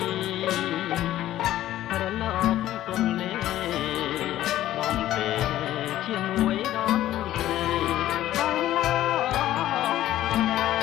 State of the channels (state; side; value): quieter; right; 13.6 dB